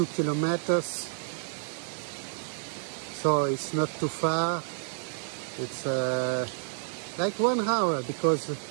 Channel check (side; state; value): left; silent; digital silence